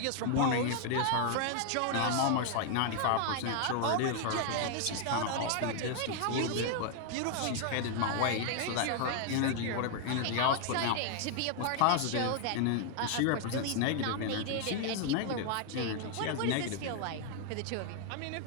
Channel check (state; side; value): different; both; correlation 0.00